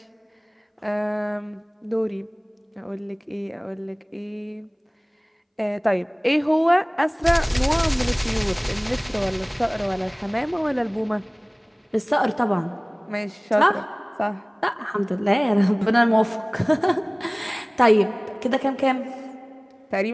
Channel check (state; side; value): identical; both; correlation 1.00